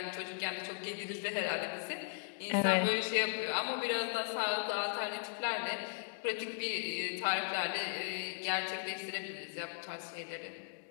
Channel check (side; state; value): right; silent; digital silence